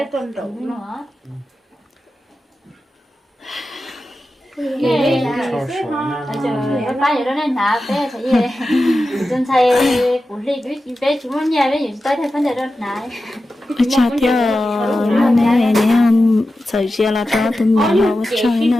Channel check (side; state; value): both; normal; correlation 0.92